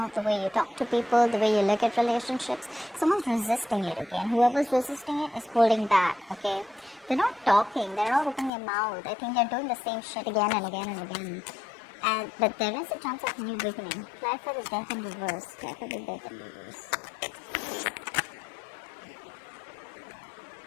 way you talk to people, the way you look at relationships. Someone's resisting it, okay? And whoever's resisting it is holding back, okay? They're not talking, they're not opening their mouth. I think they're doing the same shit again and again and again. But there is a chance of new beginning. Apply for the Death in reverse. Apply for the Death in reverse.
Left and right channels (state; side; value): drops out; right; at 8.5 s